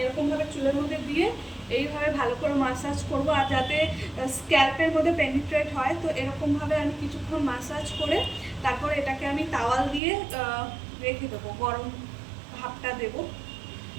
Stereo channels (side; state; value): left; drops out; at 10.0 s